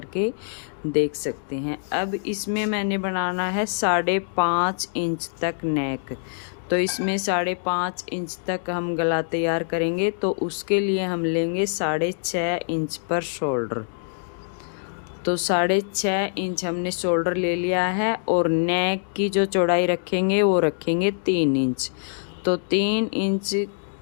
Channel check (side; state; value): right; silent; digital silence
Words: के देख सकते हैं। अब इसमें मैंने बनाना है 5.5 इंच तक नेक, तो इसमें 5.5 इंच तक हम गला तैयार करेंगे, तो उसके लिए हम लेंगे 6.5 इंच पर शोल्डर। तो 6.5 इंच हमने शोल्डर ले लिया है और नेक की जो चौड़ाई रखेंगे वो रखेंगे 3 इंच, तो 3 इंच